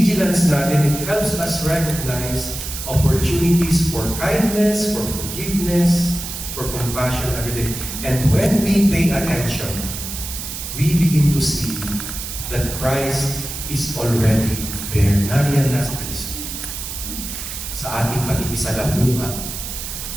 natin, it helps us recognize opportunities for kindness, for forgiveness, for compassion every day. And when we pay attention, we begin to see that Christ is already there. Nariyan na sa Kristo. Sa ating pag-ibisalamuha,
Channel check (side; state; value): right; noise; hiss, 7 dB below the sound